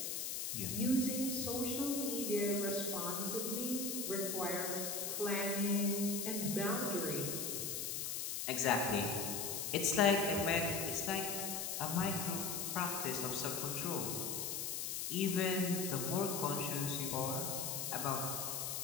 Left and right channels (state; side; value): noise; left; hiss, 2 dB below the sound